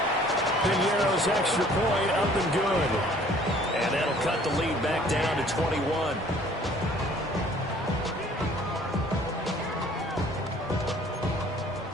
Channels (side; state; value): both; normal; correlation 0.55